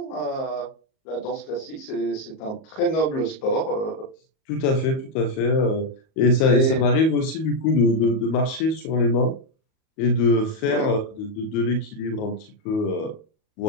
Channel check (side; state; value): right; late; 38 ms